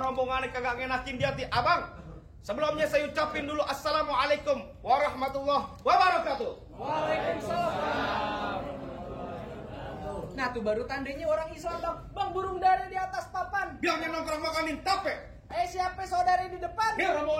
kagak ngenakin di hati. Abang, sebelumnya saya ucapin dulu assalamualaikum warahmatullahi wabarakatuh. Waalaikumsalam. Nah tuh baru tandanya orang Islam bang. Bang, burung dara di atas papan. Bilangnya nongkrong makanin tape. Siapa saudari di depan? Dia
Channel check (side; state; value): both; identical; correlation 1.00